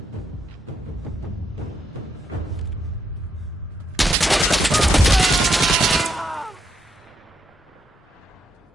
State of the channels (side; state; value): both; normal; correlation 0.78